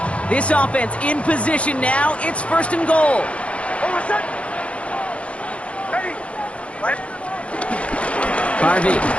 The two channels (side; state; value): right; late; 0.062 ms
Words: This offense in position now. It's first and goal. Harvey.